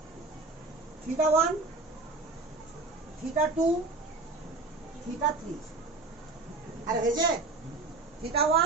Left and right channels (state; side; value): quieter; left; 3.5 dB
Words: θ1, θ2, θ3। আরে হয়েছে